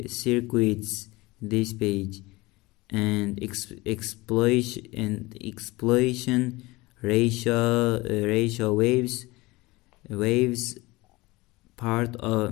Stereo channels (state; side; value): quieter; right; 21.7 dB